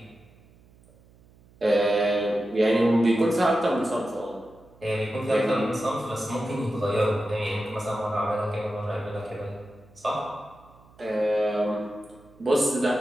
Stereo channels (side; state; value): right; noise; hum, 28 dB below the sound